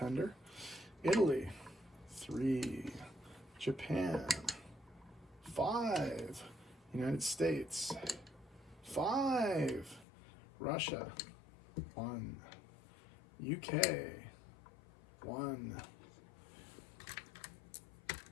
Italy, 3. Japan, 5. United States, 5. Russia, 1. UK, 1.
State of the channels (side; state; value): right; drops out; at 10.1 s